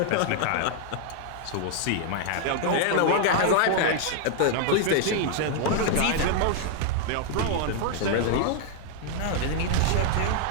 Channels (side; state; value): both; different; correlation 0.00